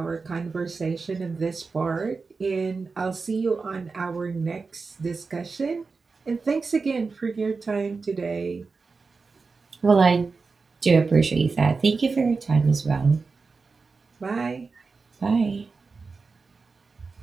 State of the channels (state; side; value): quieter; left; 4.4 dB